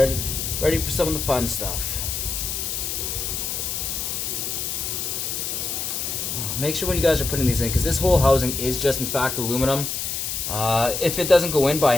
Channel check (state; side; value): noise; left; hiss, 3 dB below the sound